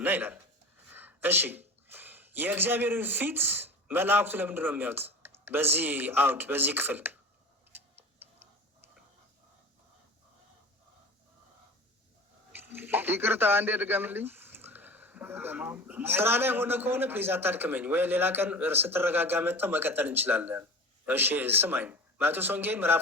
ይላል። እሺ የእግዚአብሔርን ፊት መላእክቱ ለምንድን ነው የሚያዩት? በዚህ አውድ በዚህ ክፍል ይቅርታ አንዴ ድገምልኝ። ስራ ላይ ሆነ ከሆነ ፕሊዝ አታድክመኝ፣ ወይ ሌላ ቀን ስትረጋጋ መጥተው መቀጠል እንችላለን። እሺ ስማኝ። ማቴዎስ ወንጌል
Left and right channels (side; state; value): both; normal; correlation 0.37